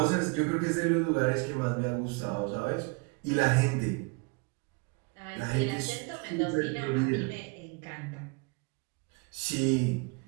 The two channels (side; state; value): left; quieter; 29.2 dB